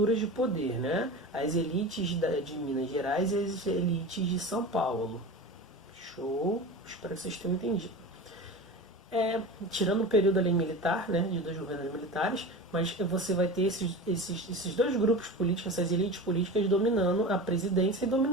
de poder, né? As elites de Minas Gerais e as elites de São Paulo. Show? Espero que vocês tenham entendido. Tirando o período ali militar, né, de dois governos militares, mas você vai ter esses dois grupos políticos, essas elites políticas dominando a presidência e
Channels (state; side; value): normal; both; correlation 0.30